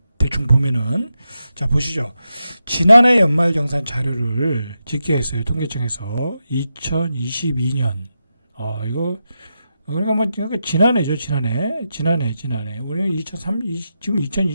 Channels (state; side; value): inverted; both; correlation -0.88